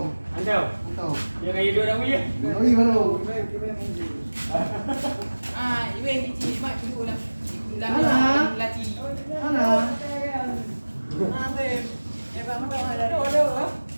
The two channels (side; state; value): both; inverted; correlation -1.00